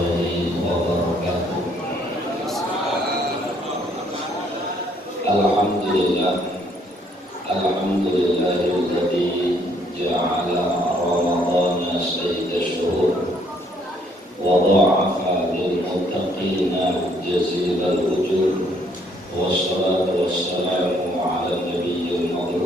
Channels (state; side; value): normal; both; correlation 0.66